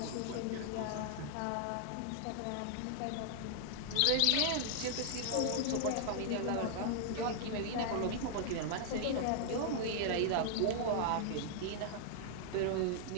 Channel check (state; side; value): different; both; correlation -0.01